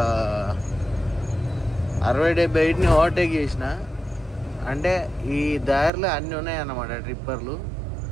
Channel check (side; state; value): left; drops out; at 5.9 s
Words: 60-70 ఓవర్టేక్ చేసిన. అంటే ఈ దారిలో అన్నీ ఉన్నాయన్నమాట ట్రిప్పర్లు.